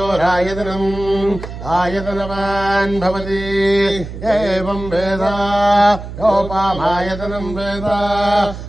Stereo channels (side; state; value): right; noise; hum, 10 dB below the sound